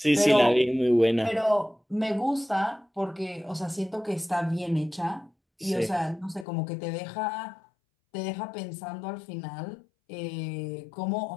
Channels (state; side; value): drops out; right; at 6.5 s